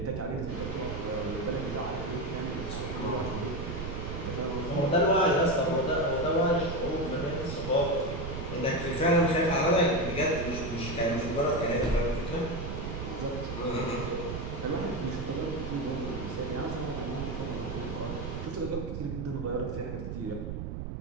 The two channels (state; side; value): noise; right; rumble, 5 dB below the sound